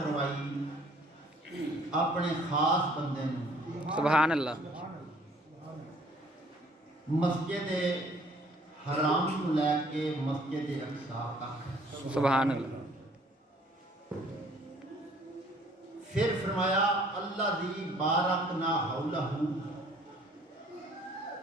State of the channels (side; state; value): both; normal; correlation 0.58